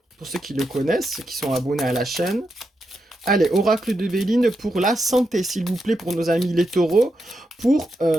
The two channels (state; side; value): normal; both; correlation 0.85